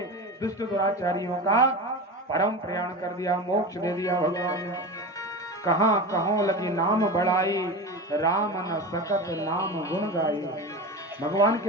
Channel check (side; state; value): both; normal; correlation 0.27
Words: दुष्ट दुराचारियों का परम प्रयाण कर दिया, मोक्ष दे दिया। भगवान ने कहाँ कहों लगी नाम बढ़ाई, राम न सकत नाम गुण गाई। भगवान